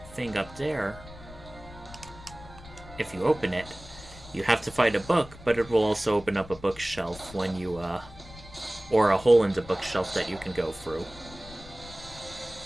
thing up there, if you open it, you have to fight a book, but it will also open up a bookshelf when you, or a hole in the bookshelf that you can go through.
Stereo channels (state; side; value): noise; left; rumble, 17 dB below the sound